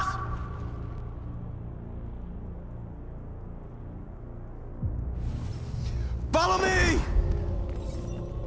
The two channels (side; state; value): both; identical; correlation 1.00